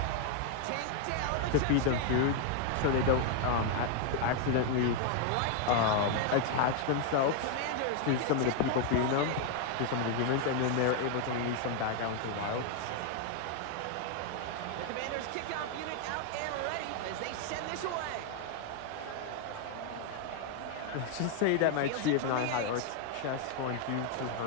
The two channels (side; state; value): both; different; correlation 0.00